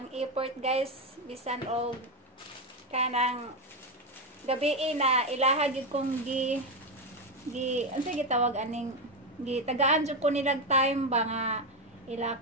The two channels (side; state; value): both; normal; correlation 0.09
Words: effort guys. Bisan og kanang gabi na ilahag yun kong ano sa gitawag aning tagaan jud ko nilag time ba nga ila